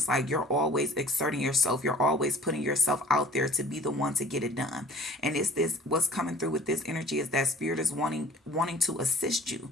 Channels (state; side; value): normal; both; correlation 0.49